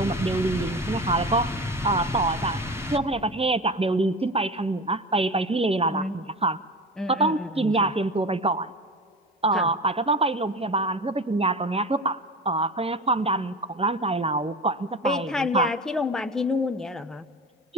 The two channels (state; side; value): normal; both; correlation 0.30